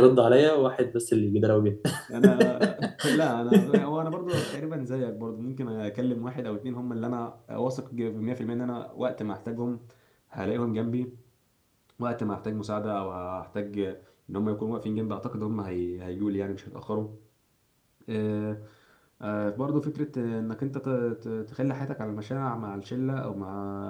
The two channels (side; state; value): both; identical; correlation 1.00